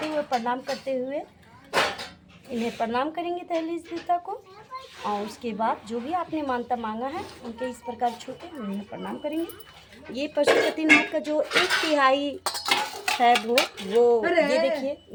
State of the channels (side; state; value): both; identical; correlation 1.00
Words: हुए प्रणाम करते हुए इन्हें प्रणाम करेंगे दहलीज देवता को। और उसके बाद जो भी आपने मानता मांगा है उनके इस प्रकार छूटे हम इन्हें प्रणाम करेंगे। ये पशुपतिनाथ का जो 1/3 है वो ये देखिए,